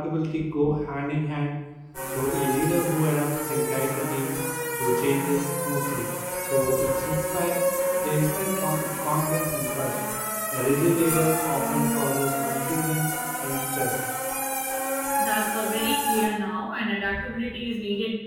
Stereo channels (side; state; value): both; identical; correlation 1.00